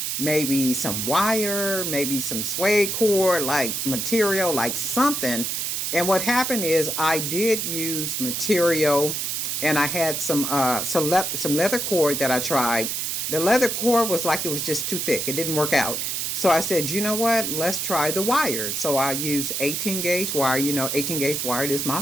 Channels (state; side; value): noise; right; hiss, 1 dB below the sound